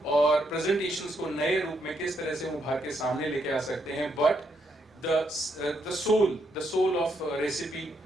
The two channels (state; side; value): normal; both; correlation 0.77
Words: और प्रेजेंटेशंस को नए रूप में किस तरह से उभार के सामने लेके आ सकते हैं। But the soul of recipe